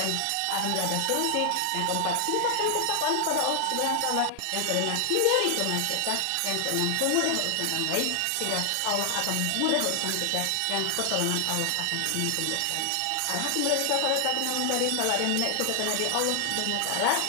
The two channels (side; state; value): both; different; correlation 0.00